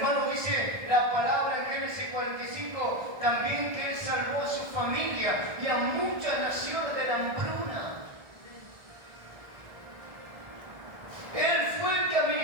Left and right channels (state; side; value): late; left; 1.5 ms